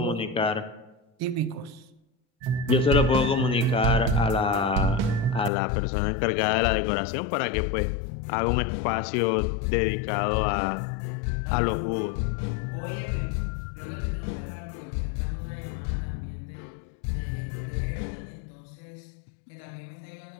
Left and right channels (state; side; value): drops out; right; at 5.5 s